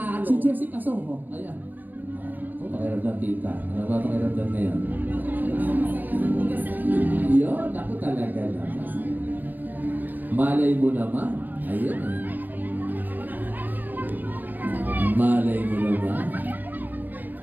Si Jessica Soho. Ayan. Pakiramdam, tita. Ano ba pakiramdam na yan? Yun, ako talaga naman. Malay mo naman. Ayun eh. Malay mo naman.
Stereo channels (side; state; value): left; late; 0.088 ms